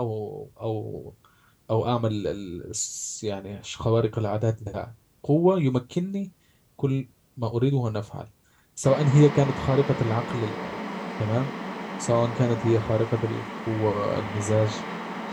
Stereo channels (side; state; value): both; identical; correlation 1.00